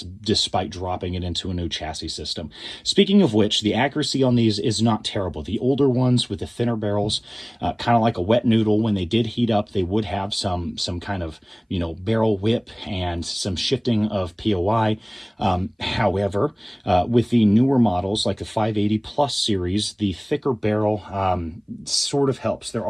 despite dropping it into a new chassis system. Speaking of which, the accuracy on these is not terrible. The older ones with the thinner barrels, kind of like a wet noodle, when they did heat up, they would have some kind of, barrel whip and some shifting of POI. However, with the newer models like the 580 Plus series, the thicker barrel sort of helps. There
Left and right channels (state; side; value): identical; both; correlation 1.00